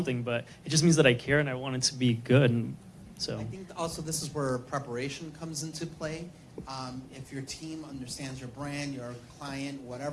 But it just means that I care, and I want it to be good. And so I think also this is where preparation comes into play. If your team understands your brand, your client,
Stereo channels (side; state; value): both; identical; correlation 1.00